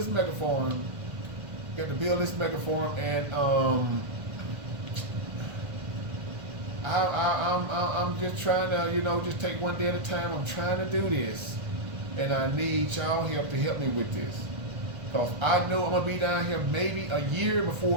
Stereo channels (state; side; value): late; left; 1.5 ms